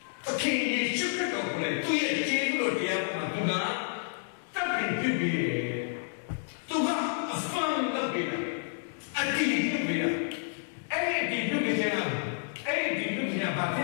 သခင်ယေရှုခရစ်တော်ကိုလည်းသူ့ရဲ့ကျေးဇူးတော်တရားမှာသူကသတ်ပြီးပြည့်ပြီးသူကအဖန်လုပ်ပြီးတာအတိအကျပြီးတာအဲ့ဒီပြုတ်ခြင်းကအဲ့ဒီပြုတ်ခြင်းကဘာဖြစ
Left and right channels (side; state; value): right; silent; digital silence